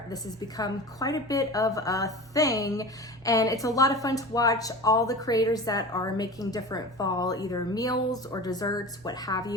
This has become quite a bit of a thing, and it's a lot of fun to watch all the creators that are making different fall either meals or desserts, what have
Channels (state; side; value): normal; both; correlation 0.33